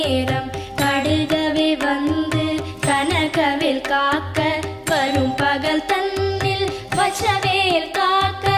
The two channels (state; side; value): identical; both; correlation 1.00